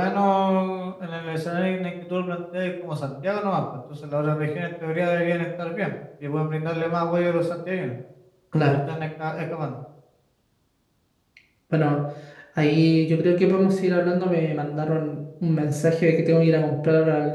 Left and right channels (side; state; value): both; identical; correlation 1.00